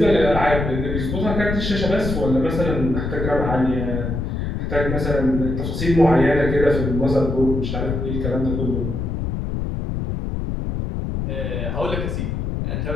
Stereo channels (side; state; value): left; noise; rumble, 3 dB below the sound